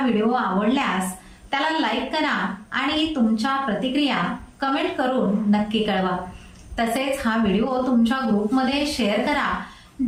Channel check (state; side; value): identical; both; correlation 1.00